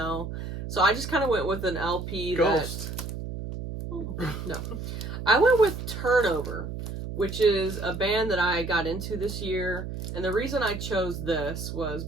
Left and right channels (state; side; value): noise; right; hum, 7 dB below the sound